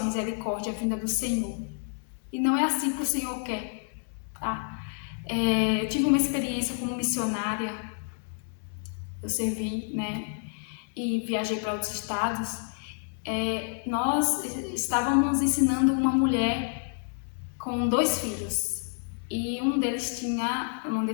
misericórdia vinda do Senhor. E não é assim que o Senhor quer, tá? Eu tive uma experiência como missionária, eu servi, né? E viajei para outros estados. Nós estávamos ensinando uma mulher com 2 filhos e um deles tinha uma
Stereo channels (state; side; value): silent; right; 59 dB below the other